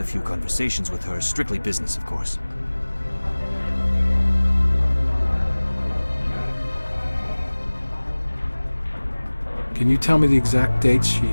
a few conversations with her, strictly business, of course. Can you tell me the exact dates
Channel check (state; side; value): inverted; both; correlation -1.00